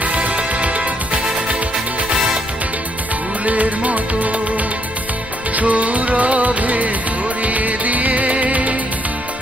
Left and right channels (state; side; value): noise; left; rumble, 17 dB below the sound